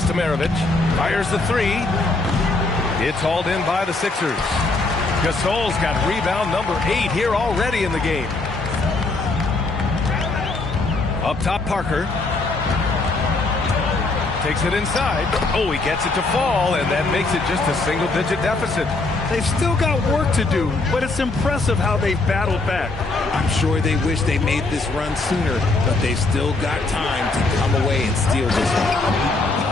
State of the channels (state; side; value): quieter; right; 3.3 dB